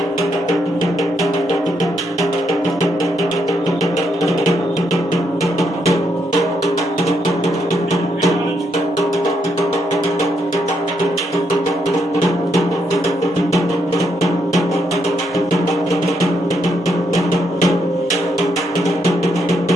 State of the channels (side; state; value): both; normal; correlation 0.77